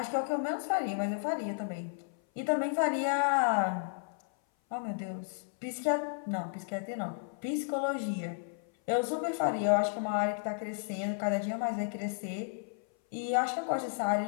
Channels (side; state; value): right; silent; 56 dB below the other